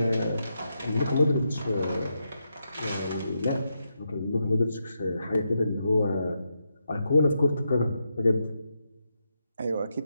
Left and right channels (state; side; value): inverted; both; correlation -0.84